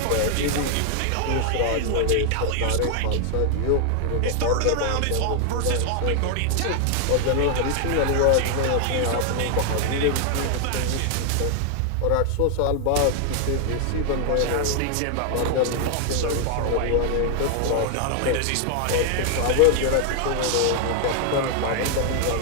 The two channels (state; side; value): different; both; correlation 0.00